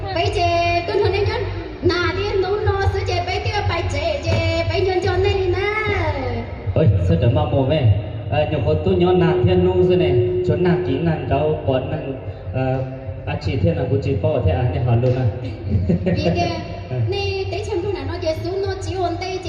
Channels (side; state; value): both; identical; correlation 1.00